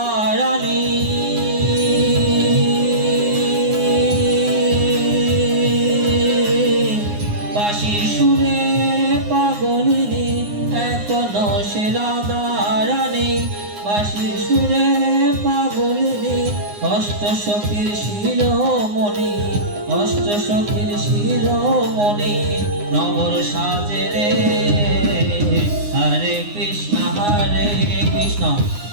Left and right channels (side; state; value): left; late; 9.7 ms